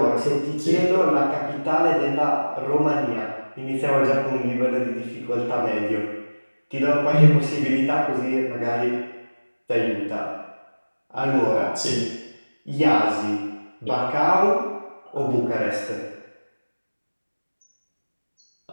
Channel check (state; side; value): inverted; both; correlation -1.00